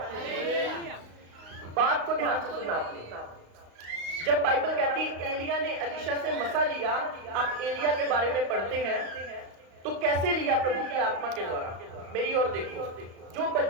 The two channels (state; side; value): late; left; 35 ms